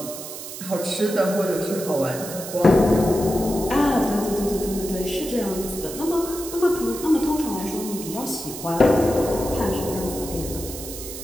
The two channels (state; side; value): noise; right; hiss, 10 dB below the sound